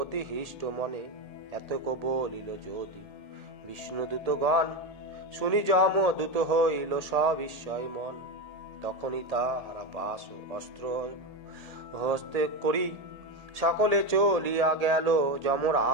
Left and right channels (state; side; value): late; left; 1.8 ms